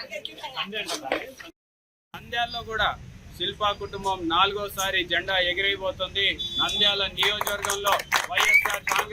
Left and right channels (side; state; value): both; identical; correlation 1.00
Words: నంద్యాలలో కూడా శిల్పా కుటుంబం 4వసారి జెండా ఎగిరైపోతుంది. నంద్యాల నియోజకవర్గంలో వైఎస్ఆర్